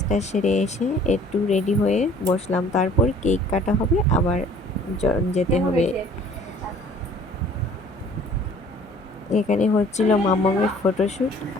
সেরে এসে একটু রেডি হয়ে বসলাম। তারপর কেক কাটা হবে, আবার যেতে হবে। এখানে হচ্ছিল মাম্মামের ফটোশ্যুট,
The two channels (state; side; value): normal; both; correlation 0.53